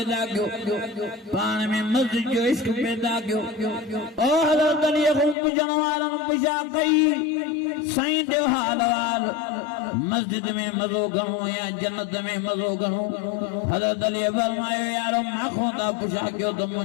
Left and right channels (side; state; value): right; drops out; at 5.4 s